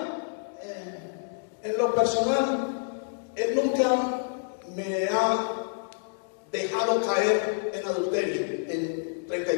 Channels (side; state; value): right; silent; digital silence